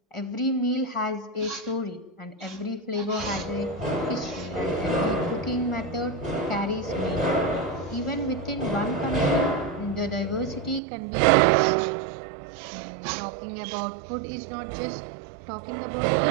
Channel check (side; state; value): left; drops out; at 10.8 s